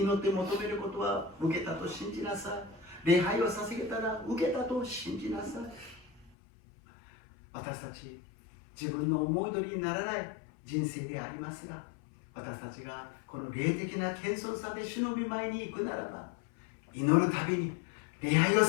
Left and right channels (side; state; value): right; drops out; at 6.3 s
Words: 求めることは受けたと信じなさい。礼拝を捧げたら受けたと信じなさい。私たち自分の思い通りにならない人生でありますが、私たちがこの霊的な謙遜さで主の御前に行くならば、祈るたびに礼拝を